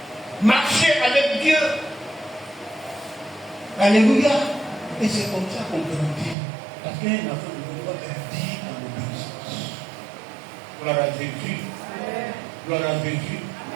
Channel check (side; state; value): left; drops out; at 6.4 s